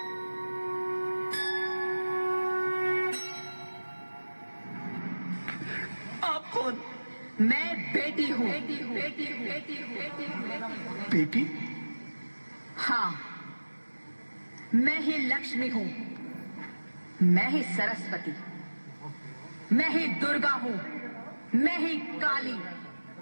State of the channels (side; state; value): both; inverted; correlation -1.00